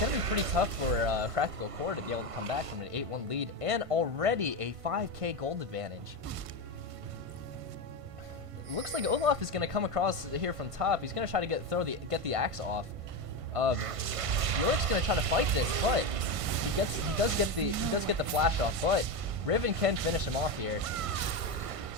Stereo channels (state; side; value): late; left; 1.5 ms